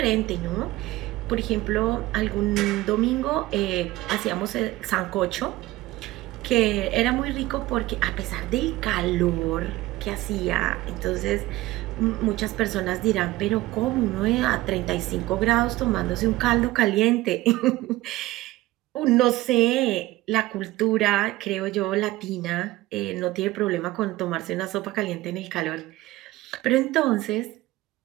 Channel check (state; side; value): quieter; left; 17.8 dB